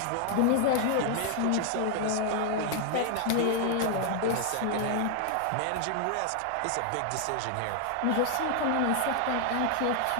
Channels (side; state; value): both; different; correlation 0.00